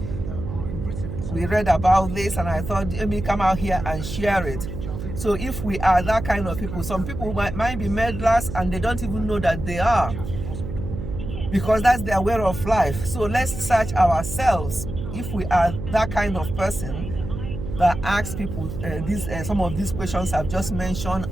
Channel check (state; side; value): noise; right; hum, 7 dB below the sound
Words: about this, and I thought, let me come out here and share it. So if we are that kind of people, some people might be meddlers and they don't even know that they are, because that's their way of life. So let's search ourselves if we are that kind of person that asks people some of these questions I've just mentioned,